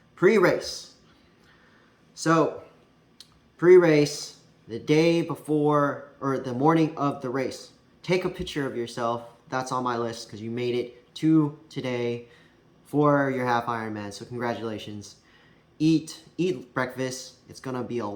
Pre-race. So pre-race, the day before or the morning of the race, take a picture of yourself. That's on my list because you made it to today for your Half Ironman, so congratulations. Eat breakfast. It's gonna be a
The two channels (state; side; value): identical; both; correlation 1.00